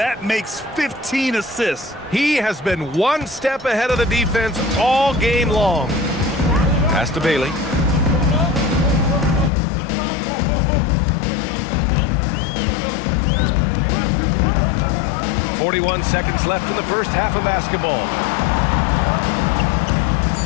makes 15 assists. He has been one step ahead of the defense all game long. Pass to Bailey. .41 seconds left in the first half of basketball.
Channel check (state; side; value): drops out; right; at 9.5 s